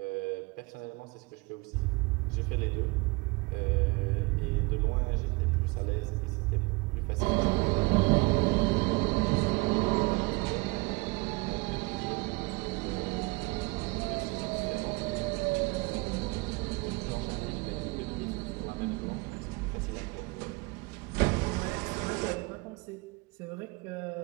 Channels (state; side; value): quieter; left; 25.9 dB